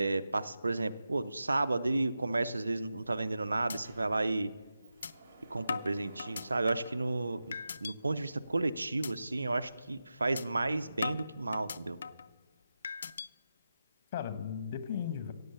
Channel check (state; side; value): inverted; both; correlation -0.90